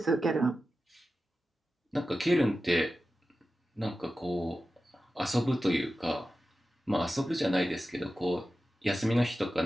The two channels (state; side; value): normal; both; correlation 0.93